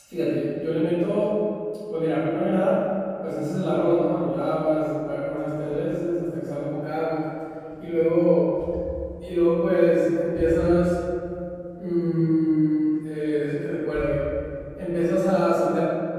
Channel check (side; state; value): both; identical; correlation 1.00